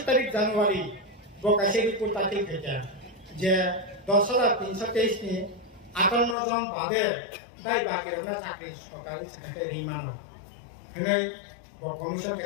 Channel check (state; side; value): drops out; right; at 6.4 s